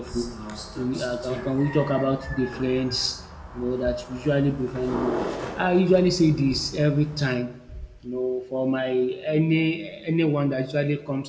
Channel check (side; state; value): both; identical; correlation 1.00